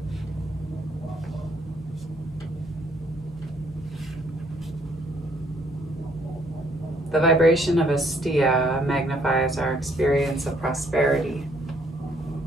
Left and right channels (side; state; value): both; normal; correlation 0.66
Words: The vibration of asteya magnifies our experience of prosperity,